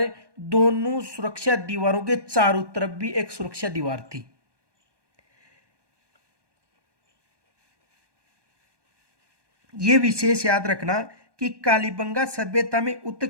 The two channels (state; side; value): late; left; 1.2 ms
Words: दोनों सुरक्षा दीवारों के चारों तरफ भी एक सुरक्षा दीवार थी। यह विशेष याद रखना कि कालीबंगा सभ्यता में